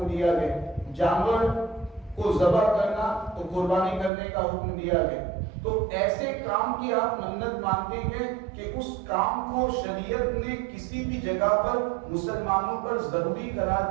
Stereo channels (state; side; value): drops out; left; at 4.1 s